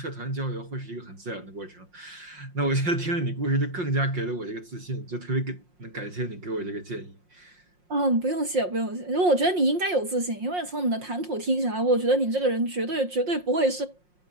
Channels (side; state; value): left; late; 5.6 ms